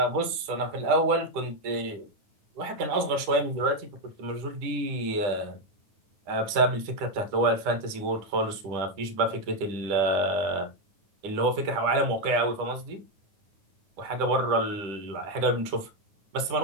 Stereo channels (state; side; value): late; left; 10 ms